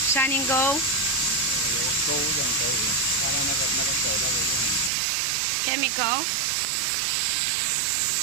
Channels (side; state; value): left; drops out; at 4.9 s